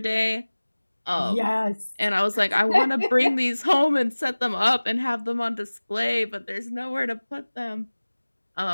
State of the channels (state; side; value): inverted; both; correlation -1.00